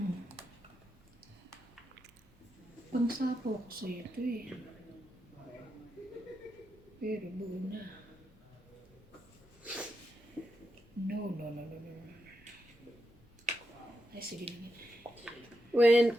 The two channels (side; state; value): both; normal; correlation 0.86